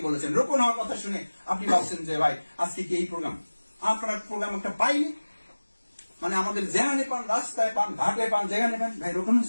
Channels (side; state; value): both; inverted; correlation -1.00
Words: বলেছেন। রোপণ হওয়ার কথা শুনে আপনি ভাবছেন যে ভাই আজকে কি এই প্রোগ্রাম, আপনার প্রোগ্রাম একটা পাইনি, মানে আমাদের যেখানে পান, রাস্তায় পান, ঘাটে পান, যেখানে পান, ভাই রোপণ